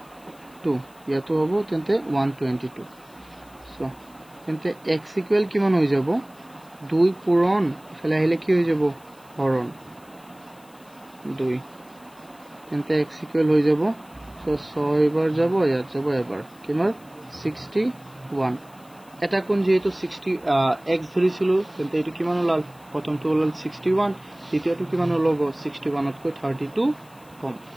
ইয়াতো হ'ব তেন্তে 122 so তেন্তে x equal কিমান হৈ যাব 2 পূৰণ ইফালে আহিলে কি হৈ যাব হৰণ 2 তেন্তে x equal হৈ যাব so 6 বাৰ যাব ইয়াত যাব এবাৰ কিমান 61 এটা কোণ যেহেতু 60 x ধৰিছিলো তেন্তে এটো কিমান ওলাল প্ৰথমটো ওলাল 61, দ্বিতীয়টো কিমান ওলাব 61তকৈ 32 কম,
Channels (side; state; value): left; noise; hiss, 28 dB below the sound